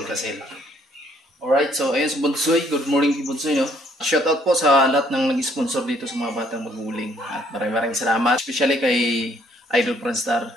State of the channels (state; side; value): normal; both; correlation 0.65